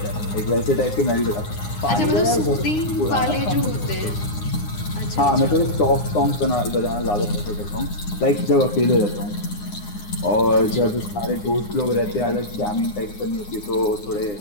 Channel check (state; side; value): late; right; 9.7 ms